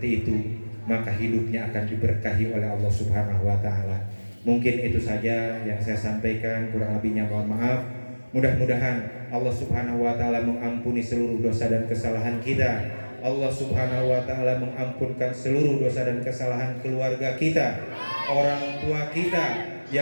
itu maka hidupnya akan diberkahi oleh Allah Subhanahu wa taala. Mungkin itu saja yang saya sampaikan, kurang lebihnya mohon maaf. Mudah-mudahan Allah Subhanahu wa taala mengampuni seluruh dosa dan kesalahan kita. Allah Subhanahu wa taala mengampunkan seluruh dosa dan kesalahan keluarga kita, orang tua kita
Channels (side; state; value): both; inverted; correlation -1.00